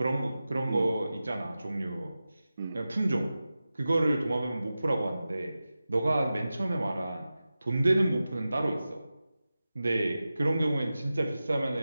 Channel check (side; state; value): both; inverted; correlation -0.94